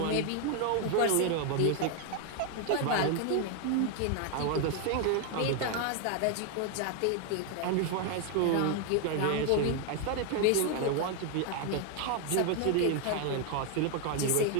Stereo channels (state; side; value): different; both; correlation 0.01